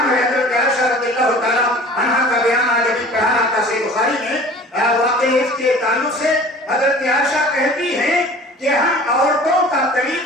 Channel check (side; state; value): both; normal; correlation 0.44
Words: ہے. حضرت عائشہ رضی اللہ تعالیٰ عنہ کا بیان آج ابھی پڑھا تھا صحیح بخاری میں, واقعی اس کے تعلق سے حضرت عائشہ کہتی ہیں کہ ہم عورتوں کا